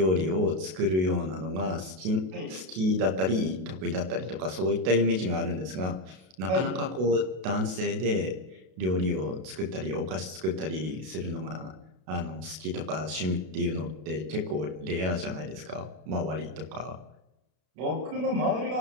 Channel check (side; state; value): left; late; 32 ms